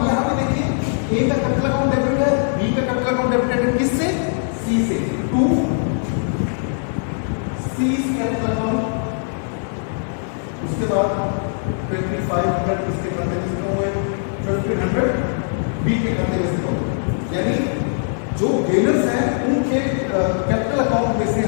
यहां पे देखिए ए का कैपिटल अकाउंट डेबिट है, बी का कैपिटल अकाउंट डेबिट है किससे, सी से, टू सी कैपिटल अकाउंट। उसके बाद 2500 इसके खाते में से हुए, 1500 बी के खाते में से हुए। यानी जो गेनर्स हैं उनके कैपिटल अकाउंट में से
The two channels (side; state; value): right; silent; 59 dB below the other